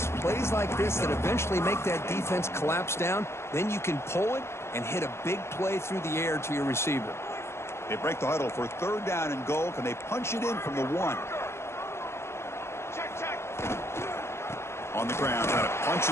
plays like this that eventually make that defense collapse down. Then you can pull it and hit a big play through the air to your receiver. They break the huddle for 3rd down and goal. Can they punch it in from the 1? On the ground, trying to punch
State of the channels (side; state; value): right; late; 0.13 ms